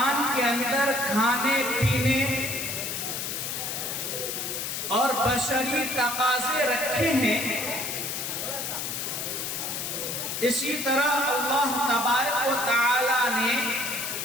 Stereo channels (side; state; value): left; noise; hiss, 3 dB below the sound